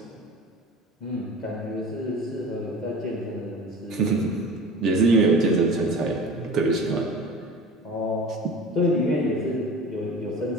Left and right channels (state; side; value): normal; both; correlation 0.37